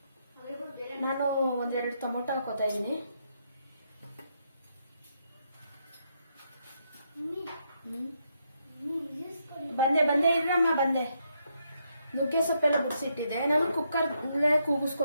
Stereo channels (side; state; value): both; inverted; correlation -0.78